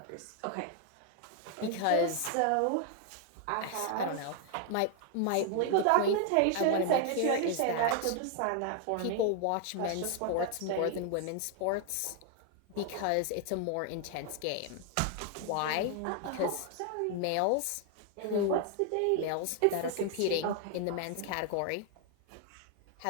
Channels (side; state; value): both; different; correlation 0.00